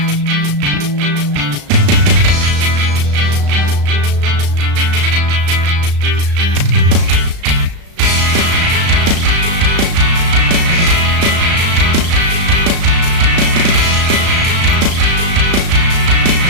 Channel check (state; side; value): late; left; 35 ms